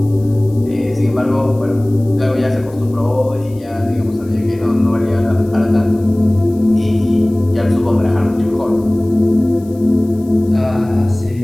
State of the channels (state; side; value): noise; left; hiss, 28 dB below the sound